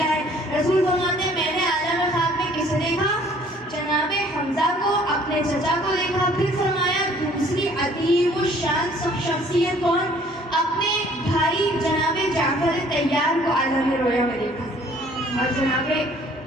ہے. رسول فرماتے ہیں میں نے عالم خواب میں کسے دیکھا؟ جناب حمزہ کو, اپنے چچا کو دیکھا. پھر فرمایا دوسری عظیم الشان شخصیت کون؟ اپنے بھائی جناب جعفر طیار کو عالم رویا میں دیکھا. اور جناب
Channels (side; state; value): both; normal; correlation 0.57